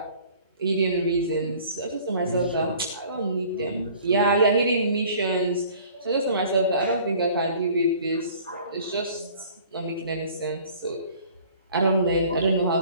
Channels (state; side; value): inverted; both; correlation -0.51